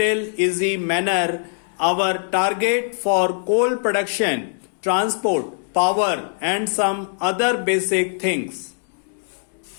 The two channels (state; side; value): silent; right; digital silence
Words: easy manner our target for coal production, transport, power and some other basic things.